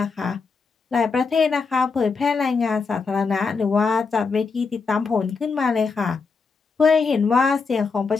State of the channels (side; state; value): right; quieter; 4.8 dB